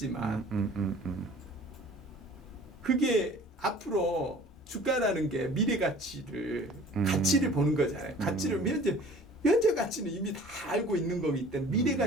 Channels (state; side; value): normal; both; correlation 0.48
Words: 그게 앞으로 주가라는 게 미래 가치를 가치를 보는 거잖아요. 가치를 현재 가치는 이미 다 알고 있는 거기 때문에 미래